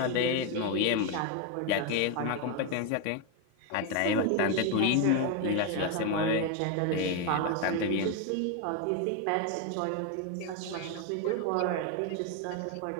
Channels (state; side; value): different; both; correlation 0.02